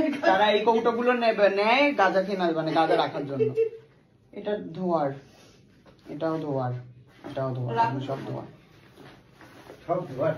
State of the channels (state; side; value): identical; both; correlation 1.00